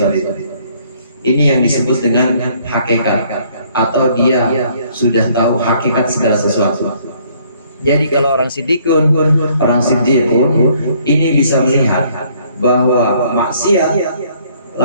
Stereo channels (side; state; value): both; inverted; correlation -0.63